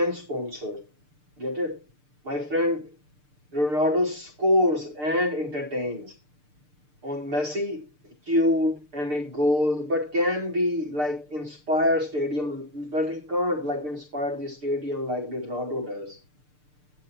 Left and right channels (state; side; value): late; left; 6.7 ms